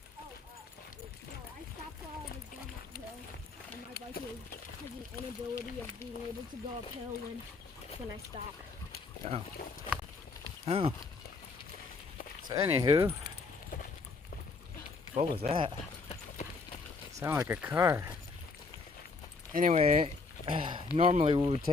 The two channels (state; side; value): quieter; right; 4.2 dB